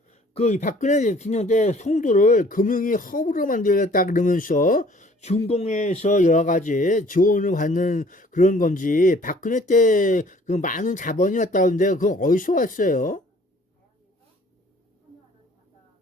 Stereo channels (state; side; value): normal; both; correlation 0.55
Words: 그 박근혜 대통령 때 송도를 금융위 허브로 만들겠다 그러면서 중공에서 여러 가지 지원을 받는 그런 건지, 박근혜 때 그 많은 자본이 왔다는데 그건 어디서 왔어요?